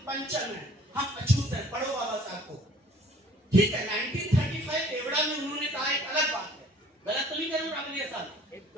पंचम हैं, हम अछूत हैं। पढ़ो बाबा साहब को, ठीक है। 1935 एवड़ा में उन्होंने कहा, एक अलग बात है, गलत तो नहीं करूँ अगले साल।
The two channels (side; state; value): both; normal; correlation 0.53